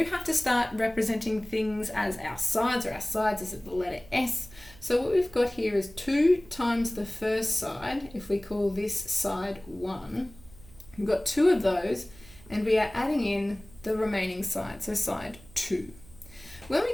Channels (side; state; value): right; noise; hum, 22 dB below the sound